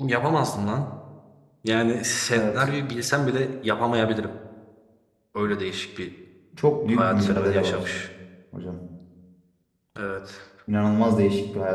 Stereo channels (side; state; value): both; identical; correlation 1.00